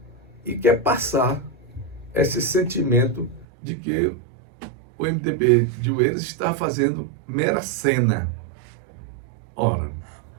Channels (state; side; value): drops out; left; at 3.5 s